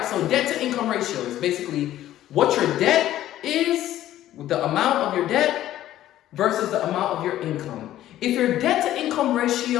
so debt to income ratio is basically what your debt is, the amount of your debt versus the amount of your income. If your debt to income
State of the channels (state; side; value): quieter; right; 13.3 dB